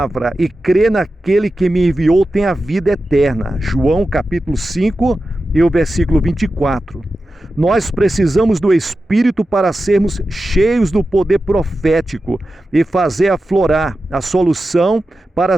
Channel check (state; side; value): normal; both; correlation 0.92